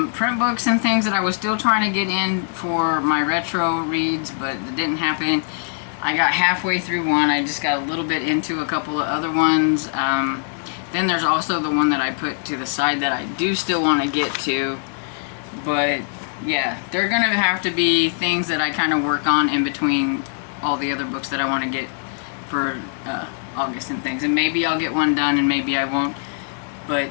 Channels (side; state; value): right; silent; digital silence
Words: print books and things that I was still trying to get in for my retro reads, but it didn't happen. I got halfway through one. I just got a little bit into a couple of other ones. Then there's also the one that I put to the side that I do still want to get to. But yeah, they're going to have to be things that I kind of work on in between all the other books that I want to get for August and things. And maybe I'll get one done and maybe I won't. But